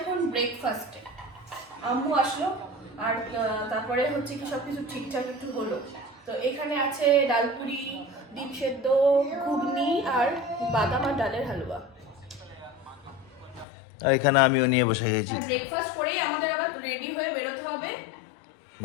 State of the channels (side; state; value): right; drops out; at 13.7 s